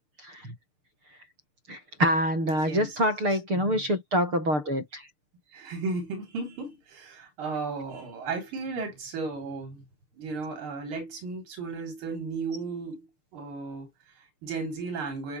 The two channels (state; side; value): late; left; 6.6 ms